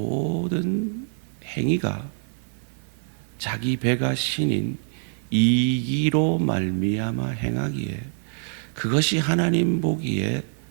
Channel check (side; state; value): left; silent; digital silence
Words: 행위가 자기 배가 신인 이기로 말미암아 행하기에 그것이 하나님 보기에